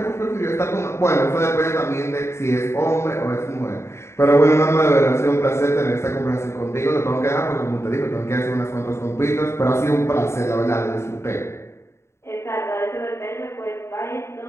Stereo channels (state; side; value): late; right; 0.13 ms